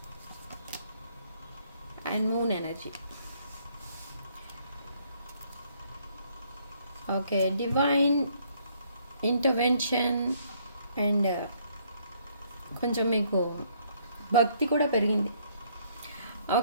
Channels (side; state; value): both; inverted; correlation -0.66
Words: and moon energy. Okay, divine intervention and కొంచెం మీకు భక్తి కూడా పెరిగింది.